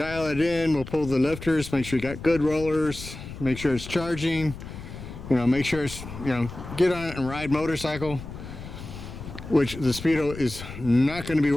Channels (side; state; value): left; noise; rumble, 12 dB below the sound